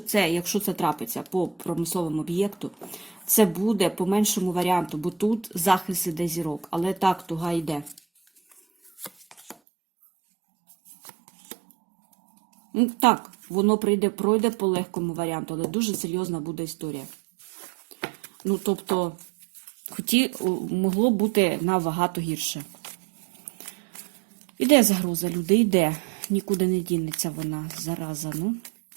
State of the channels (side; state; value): left; drops out; at 9.6 s